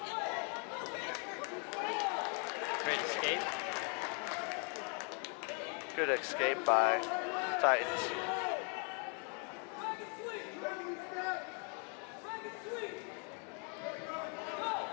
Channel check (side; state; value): right; quieter; 38.8 dB